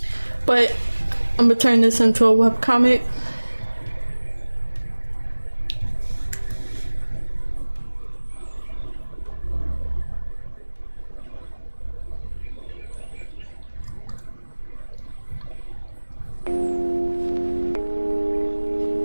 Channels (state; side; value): inverted; both; correlation -1.00